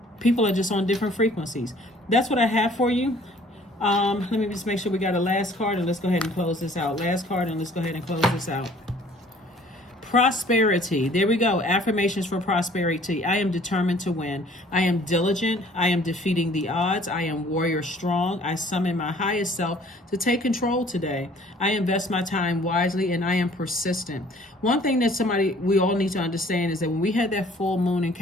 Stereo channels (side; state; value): both; normal; correlation 0.55